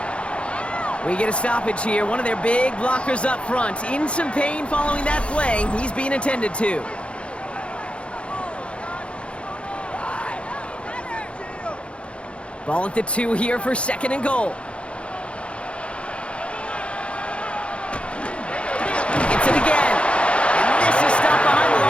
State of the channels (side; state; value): right; late; 0.059 ms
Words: We get a stoppage here. One of their big blockers up front. In some pain following that play. He's being attended to. Ball at the 2 here for second and goal. Gets it again. And this is stopped behind the